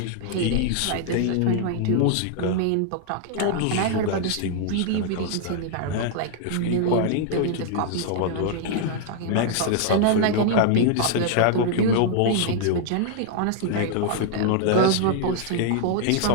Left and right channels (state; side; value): different; both; correlation 0.00